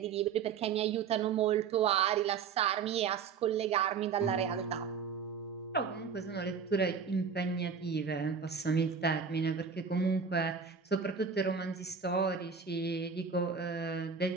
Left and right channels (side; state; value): left; quieter; 6.1 dB